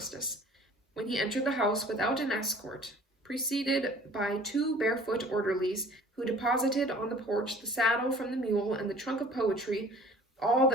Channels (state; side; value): normal; both; correlation 0.49